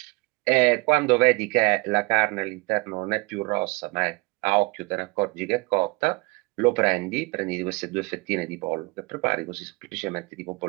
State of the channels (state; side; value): quieter; left; 25.7 dB